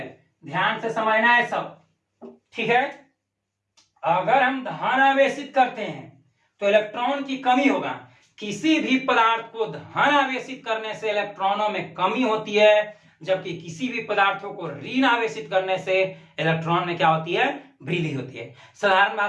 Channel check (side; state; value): both; identical; correlation 1.00